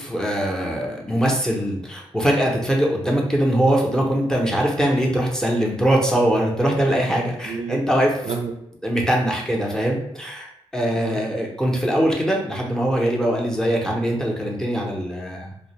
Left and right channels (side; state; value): both; normal; correlation 0.84